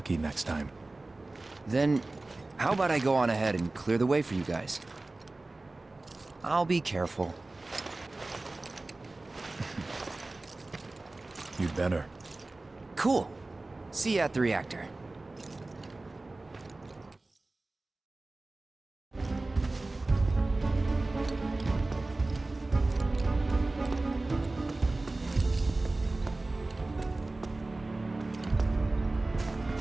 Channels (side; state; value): left; quieter; 3.1 dB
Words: next time. Then, how about I go on ahead and clear the way for you guys? I'll be careful. You'd better. Cool. See you at the reactor.